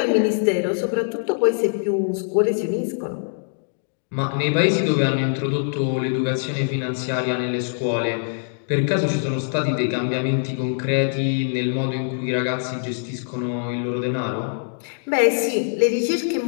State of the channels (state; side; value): silent; right; digital silence